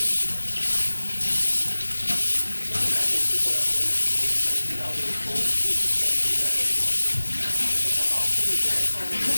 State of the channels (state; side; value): inverted; both; correlation -1.00